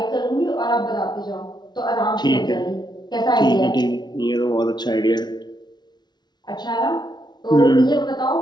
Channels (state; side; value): late; right; 0.20 ms